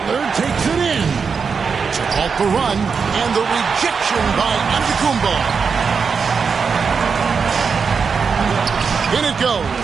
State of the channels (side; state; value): left; quieter; 5.7 dB